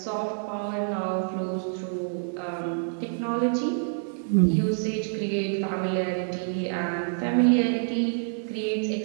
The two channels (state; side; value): silent; left; 60 dB below the other